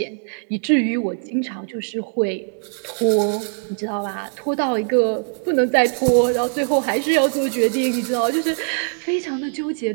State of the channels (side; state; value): left; silent; 65 dB below the other